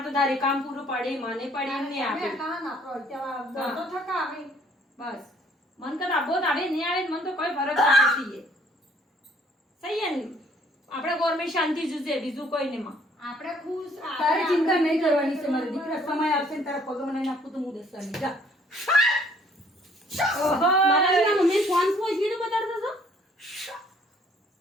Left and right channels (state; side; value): normal; both; correlation 0.61